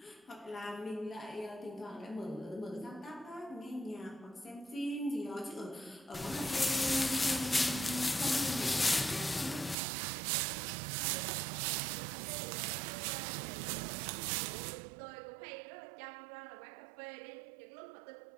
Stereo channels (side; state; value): left; drops out; at 9.8 s